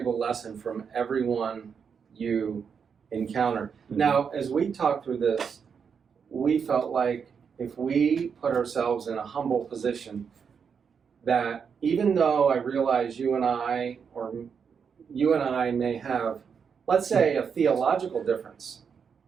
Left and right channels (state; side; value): quieter; left; 6.5 dB